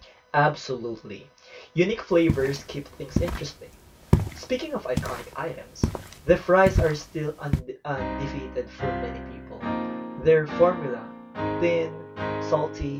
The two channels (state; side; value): identical; both; correlation 1.00